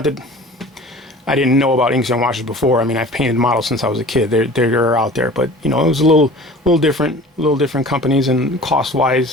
I didn't know about inks and washes before. I mean, I've painted models since I was a kid. They're out there, but you know, it was a little different companies and cost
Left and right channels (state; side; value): normal; both; correlation 0.43